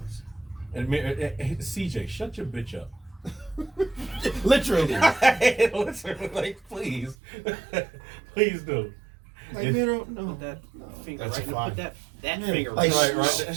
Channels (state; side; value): drops out; left; at 7.2 s